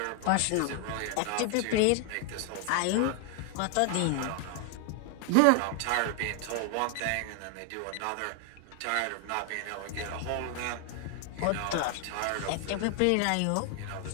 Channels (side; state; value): both; different; correlation 0.00